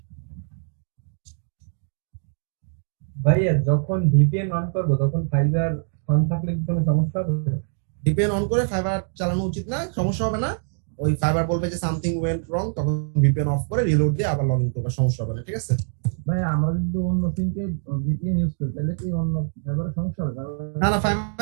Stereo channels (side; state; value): left; silent; digital silence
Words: ভাইয়া যখন ভিপিএন অন করবো তখন ফাইবার অন থাকলে কি কোনো সমস্যা হবে? ভিপিএন অন করে ফাইবার চালানো উচিত না, সমস্যা হবে না। ওই ফাইবার বলবে যে সামথিং ওয়েন্ট রং, তখন ভিপিএন অফ করে রিলোড দিয়ে আবার লগইন করবে, সমস্যা হবে না, ঠিক আছে? ভাই আমরা যদি অন্য সিমকে ভিপিএন ইউজ করি তাহলে কি অন্য ফাইবারের সমস্যা হবে? না না,